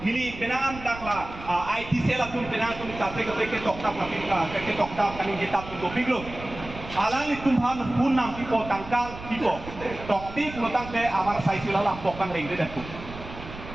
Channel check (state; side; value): noise; right; rumble, 13 dB below the sound